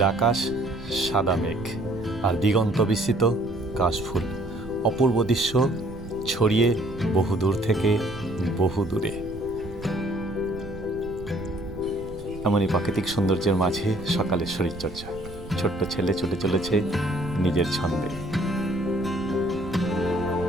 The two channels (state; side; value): noise; right; rumble, 14 dB below the sound